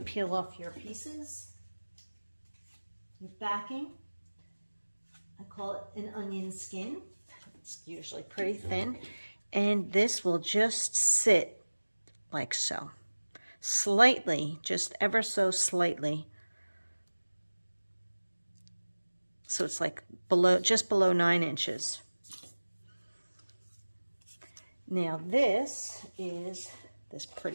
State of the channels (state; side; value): inverted; both; correlation -1.00